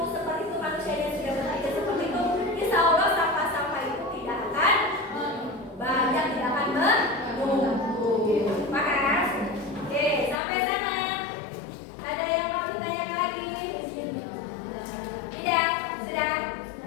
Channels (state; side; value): drops out; right; at 10.4 s